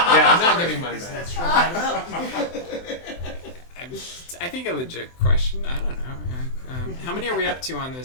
I'm not giving mine back. I think a legit question. I don't know. How many are we up to on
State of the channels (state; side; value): late; right; 23 ms